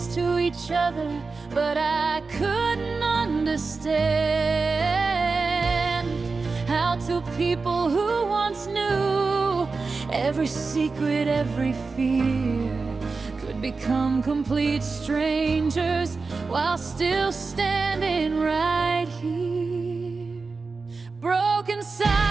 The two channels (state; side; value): quieter; left; 4.2 dB